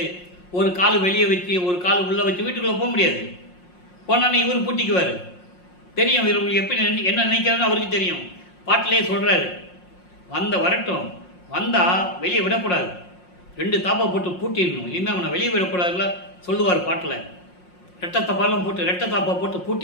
ஒரு கால் வெளியே வச்சு ஒரு கால் உள்ளே வச்சு வீட்டுக்குள்ளே போக முடியாது. போனானே இவர் பூட்டிக்குவார். தெரியும் இவர் எப்படி என்ன நினைக்கிறான்னு அவருக்கு தெரியும். பாட்டிலே சொல்கிறாரு, வரட்டும், வந்தால் வெளியே விடக்கூடாது, 2 தாப்பா போட்டு பூட்டிடணும், இனிமேல் அவனை வெளியே விடக்கூடாதுல சொல்லுவார் பாட்டில். ரெட்டை தாப்பா போட்டு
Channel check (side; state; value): right; late; 5.6 ms